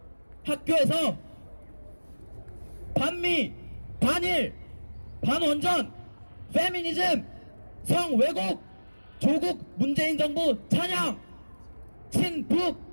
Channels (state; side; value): inverted; both; correlation -1.00